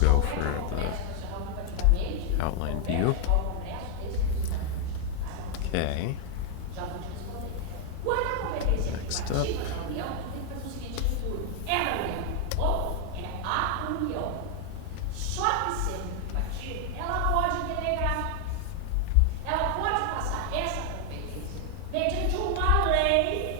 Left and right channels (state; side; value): different; both; correlation 0.00